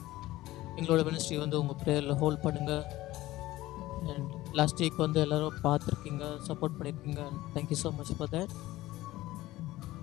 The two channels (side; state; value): right; quieter; 17.0 dB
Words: எங்களோட மினிஸ்ட்ரி வந்து உங்கள் ப்ரேயரில் ஹோல்ட் பண்ணுங்கள். அண்ட் லாஸ்ட் வீக் வந்து எல்லோரும் பார்த்துருக்கீங்க, சப்போர்ட் பண்ணியிருக்கீங்க. And thank you so much for that.